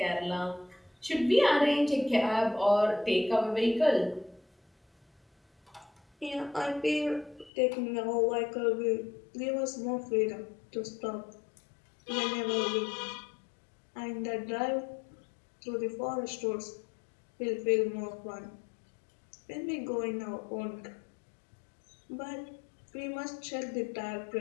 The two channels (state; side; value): drops out; right; at 7.5 s